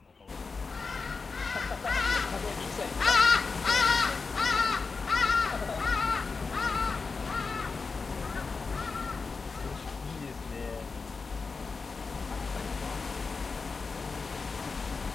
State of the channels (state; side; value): quieter; right; 4.5 dB